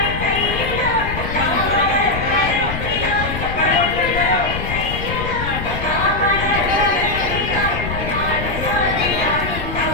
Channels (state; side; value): noise; left; rumble, 6 dB below the sound